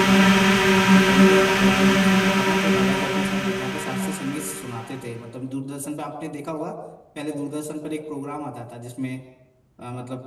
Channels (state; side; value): identical; both; correlation 1.00